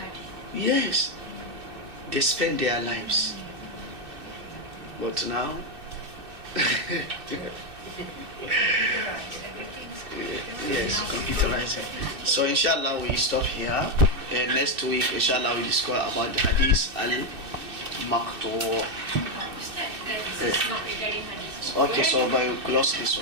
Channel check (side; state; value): left; late; 2.6 ms